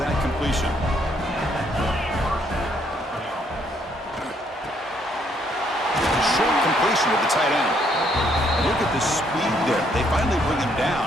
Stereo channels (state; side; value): normal; both; correlation 0.69